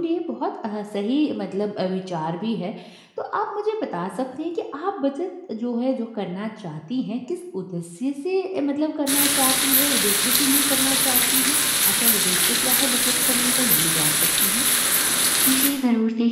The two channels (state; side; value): identical; both; correlation 1.00